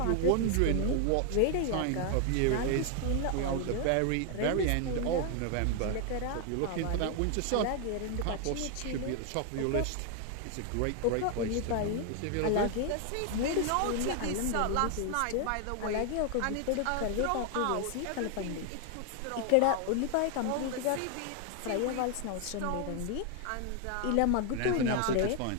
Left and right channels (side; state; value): both; different; correlation 0.00